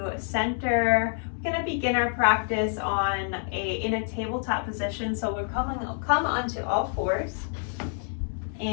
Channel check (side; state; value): right; silent; 60 dB below the other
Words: center. We're going to begin our practice in a tabletop position. So we're come onto all fours